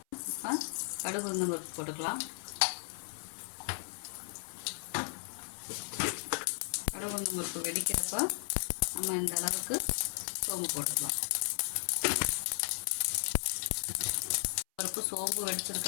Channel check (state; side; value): silent; right; 54 dB below the other